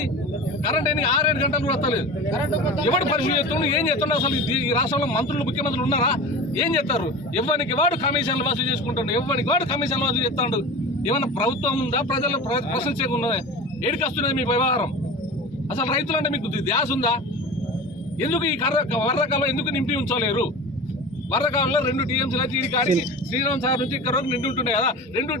కరెంట్ ఎన్ని 6-7 గంటలు కూడా వస్తలేదు. ఎవడు పరిశీలి చేస్తుండు, ఏం చేస్తుండ? అసలు ఈ రాష్ట్రంలో మంత్రులు ముఖ్యమంత్రులు ఉన్నారా? ఏం చేస్తారు? ఎవరికి వాడు కమిషన్లు వసూలు చేసుకుంటాడు, ఎవరికి వాడు కమిషన్లు వసూలు చేస్తాడు. ఏమన్నా ప్రభుత్వం ఉందా? ప్రజలు ప్రశ్నించకుండా ఏడికి వస్తున్నది మీ వ్యవహారం? అసలు రైతులంటే మీకు ధ్యాస ఉందా? ఎందుకు ఈ వరదకాలం ఎందుకు నింపి ఉంచలేరు? వరదకాలంలో 2 టీఎంసీలు అయితే ఈ కాడికి శ్రీరామ్ సాగర్ నుంచి ఇక్కడ వరకు నిండి ఉంటుండే కదా. 2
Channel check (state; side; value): normal; both; correlation 0.32